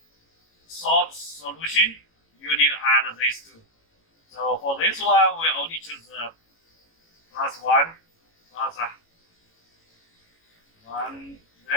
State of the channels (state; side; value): late; right; 18 ms